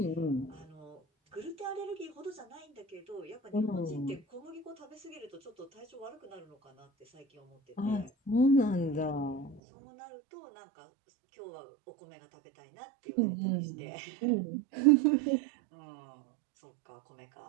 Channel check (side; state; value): left; drops out; at 9.6 s